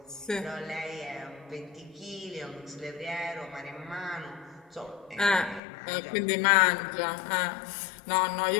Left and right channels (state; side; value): drops out; right; at 5.6 s